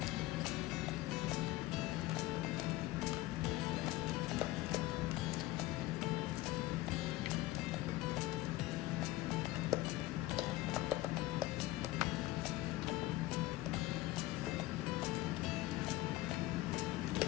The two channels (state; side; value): quieter; right; 17.4 dB